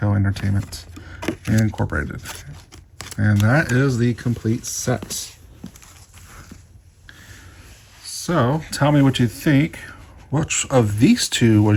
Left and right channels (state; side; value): identical; both; correlation 1.00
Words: Entertainment Incorporated. And that is the complete set. So tell me what you think. Which of these two